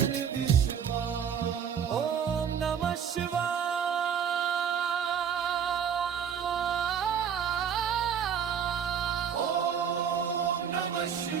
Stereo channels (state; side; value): quieter; left; 7.9 dB